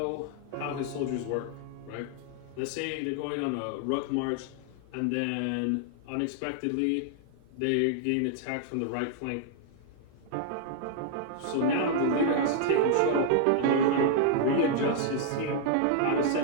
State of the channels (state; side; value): different; both; correlation -0.01